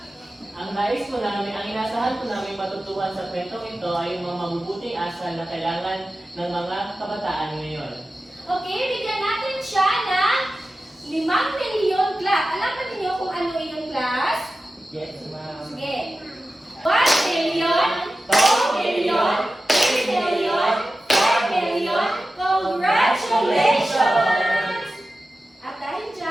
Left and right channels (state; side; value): normal; both; correlation 0.94